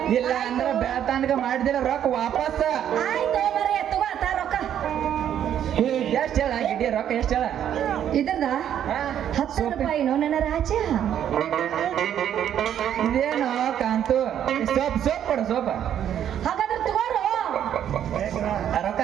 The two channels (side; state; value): left; quieter; 10.0 dB